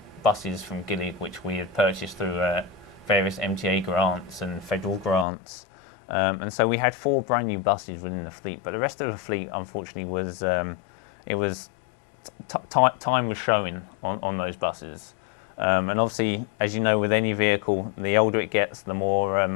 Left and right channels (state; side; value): drops out; right; at 5.2 s